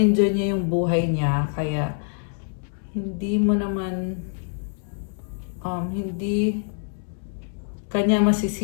niya yung buhay niya, kaya hindi mo naman hindi kanya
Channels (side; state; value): right; silent; 62 dB below the other